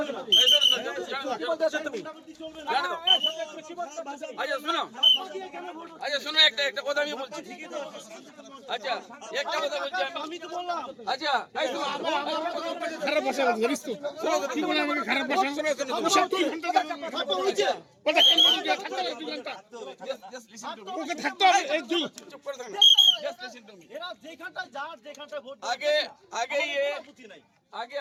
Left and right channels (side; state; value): both; identical; correlation 1.00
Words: আচ্ছা শোনো, একটা কথা আমি বলছি। আচ্ছা একটা কথা বলছি আমি তো বললাম। আচ্ছা খারাপ ভাষা বলিস তো। কি বলে আমাকে খারাপ ভাষা শোনাচ্ছ? 2 ঘন্টা কথা হয়েছে। কথা কেন বলি যে থাকতে হবে 2 ঘন্টা? ওকে থাকতে হবে এই দুই। চুপ করে থাকুন। Just listen to me. এরা যেখানটা ভোট আগে